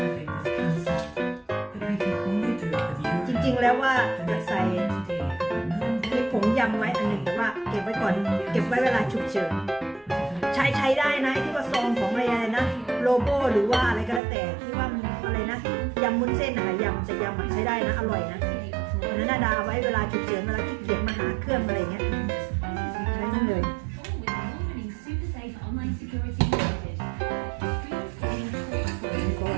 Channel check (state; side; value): drops out; left; at 14.2 s